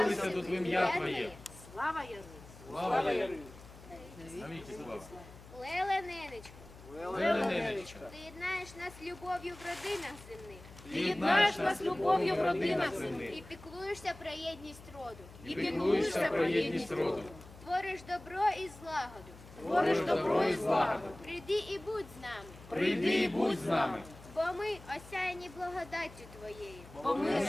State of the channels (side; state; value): left; noise; hum, 19 dB below the sound